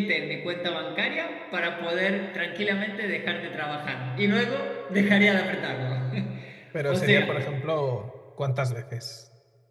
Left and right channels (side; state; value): both; identical; correlation 1.00